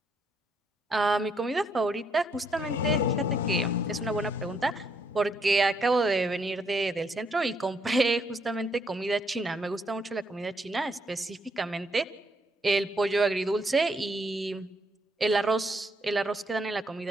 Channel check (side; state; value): both; normal; correlation 0.73